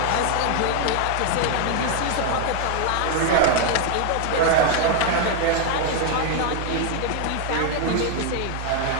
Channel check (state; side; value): different; both; correlation 0.00